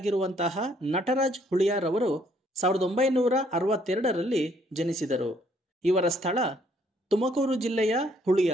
ನಟರಾಜ್ ಹುಳಿಯಾರ್ ಅವರು 1962ರಲ್ಲಿ ಜನಿಸಿದರು. ಇವರ ಸ್ಥಳ ತುಮಕೂರು ಜಿಲ್ಲೆಯ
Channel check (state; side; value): normal; both; correlation 0.66